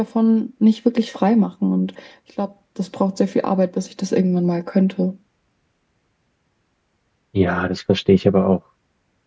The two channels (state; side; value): identical; both; correlation 1.00